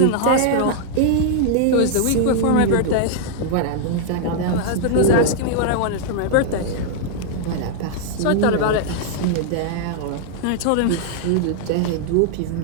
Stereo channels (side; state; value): both; different; correlation -0.01